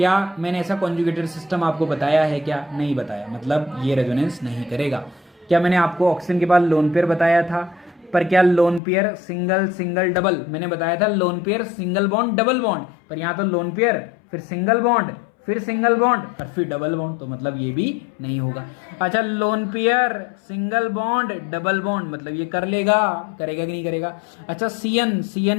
मैंने ऐसा कॉन्जुगेटेड सिस्टम आपको बताया है? क्या नहीं बताया, मतलब ये रेजोनेंस नहीं करेगा। क्या मैंने आपको ऑक्सीजन के बाद लोन पेयर बताया था? पर क्या lone pair single single double, मैंने बताया था lone pair single bond double bond, पर यहाँ तो लोन पेयर फिर सिंगल बॉन्ड फिर सिंगल बॉन्ड और फिर डबल बॉन्ड, तो मतलब ये भी नहीं होगा। अच्छा, lone pair single bond double bond, मतलब ये कर लेगा, करेगा कि नहीं करेगा? अच्छा,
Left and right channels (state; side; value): drops out; right; at 8.8 s